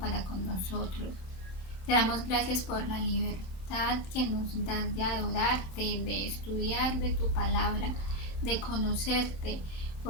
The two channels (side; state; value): right; late; 27 ms